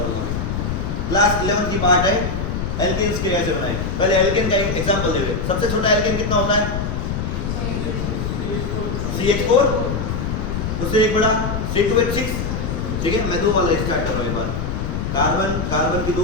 क्लास 11 की पार्ट है एल्केन्स के कैसे बनाए। पहले एल्केन का एग्जांपल दे रहे। सबसे छोटा एल्केन कितना होता है, CH4, उससे एक बड़ा C2H6, ठीक है। मैं दो वाला स्टार्ट कर रहा हूँ एक बार। कार्बन कार्बन की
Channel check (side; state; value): left; noise; rumble, 2 dB below the sound